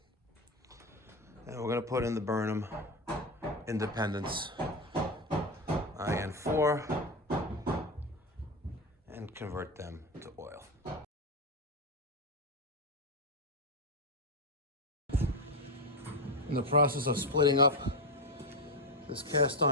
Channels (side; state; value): both; normal; correlation 0.12